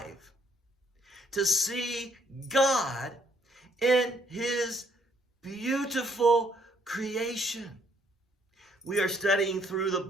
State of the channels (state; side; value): normal; both; correlation 0.67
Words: to see God in His beautiful creation. We are studying through the